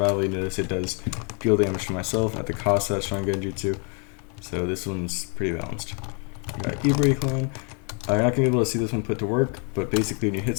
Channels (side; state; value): right; quieter; 37.3 dB